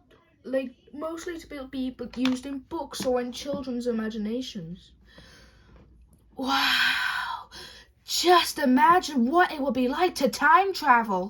mostly to be used in books or in children's imaginations. Wow! Just imagine what it would be like to time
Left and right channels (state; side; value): identical; both; correlation 1.00